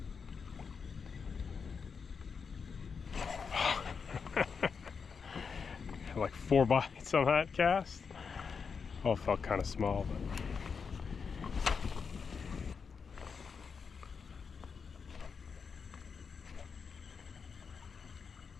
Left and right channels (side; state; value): right; quieter; 5.7 dB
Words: Like 4 bites on that cast. Oh, it felt kind of small, but